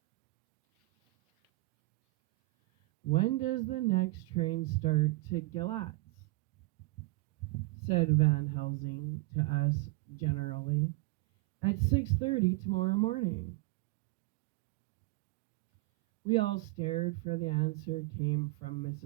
When does the next train start to Galatz? Said Van Helsing to us generally. At 6:30 tomorrow morning. We all stared, for the answer came from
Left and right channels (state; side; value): quieter; left; 22.0 dB